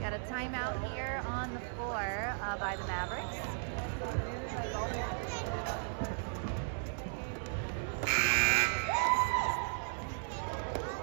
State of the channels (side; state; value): left; silent; 54 dB below the other